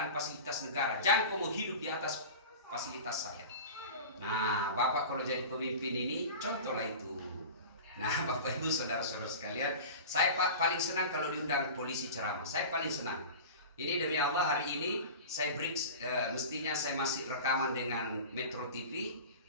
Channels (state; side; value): inverted; both; correlation -0.34